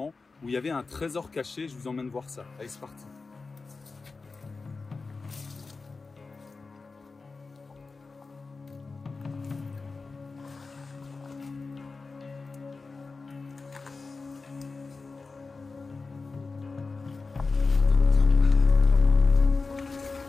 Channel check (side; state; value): right; quieter; 4.1 dB